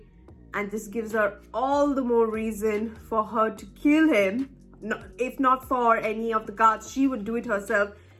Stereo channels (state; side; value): identical; both; correlation 1.00